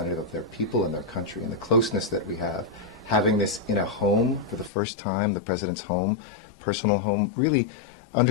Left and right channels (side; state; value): right; drops out; at 4.7 s